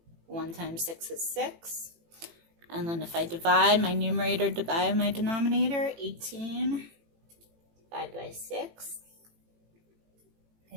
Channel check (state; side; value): late; left; 18 ms